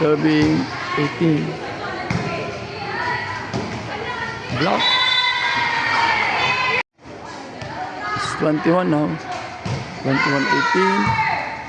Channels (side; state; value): both; identical; correlation 1.00